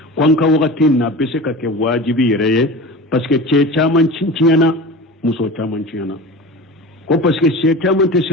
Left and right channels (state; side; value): normal; both; correlation 0.33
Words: ko an ka wagati na bɛ se ka kɛ wajibi yɛrɛ ye parce que cɛ caman tiɲɛna muso caman tiɲɛna ko parce que cɛ caman tɛ